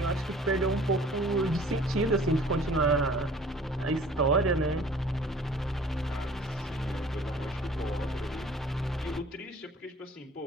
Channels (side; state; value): both; normal; correlation 0.50